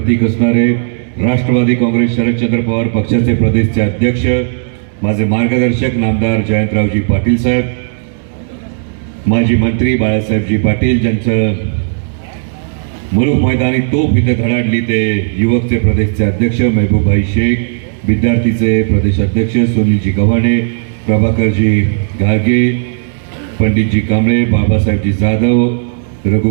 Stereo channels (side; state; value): left; silent; digital silence